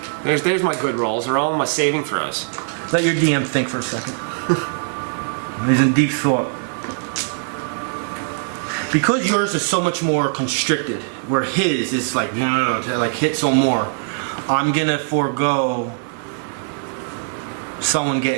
There's my good rolls. They're all my saving throws. Let your DM think for a second. He's in deep thought. Because yours is so much more constricted, where his is like, no, like hit some more. I'm gonna forego someone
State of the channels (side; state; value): left; silent; digital silence